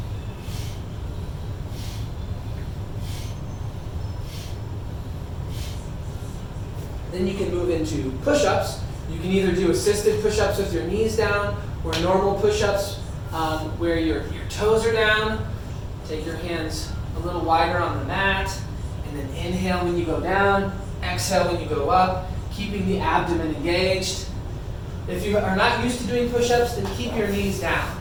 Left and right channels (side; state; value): both; identical; correlation 1.00